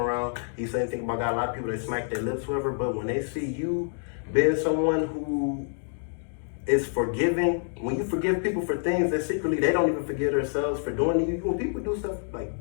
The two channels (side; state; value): right; silent; digital silence